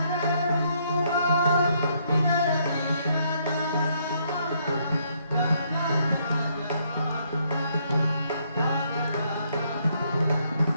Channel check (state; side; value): inverted; both; correlation -0.71